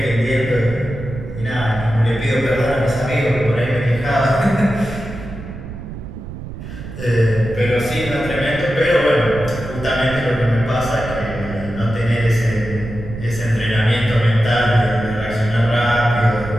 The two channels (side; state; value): right; noise; rumble, 11 dB below the sound